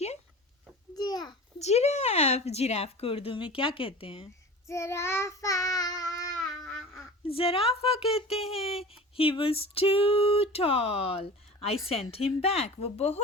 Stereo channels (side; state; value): both; normal; correlation 0.36